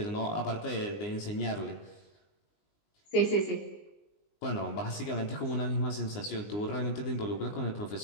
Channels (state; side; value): late; right; 19 ms